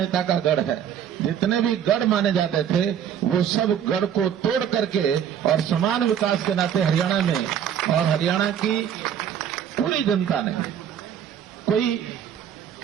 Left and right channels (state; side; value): quieter; left; 9.2 dB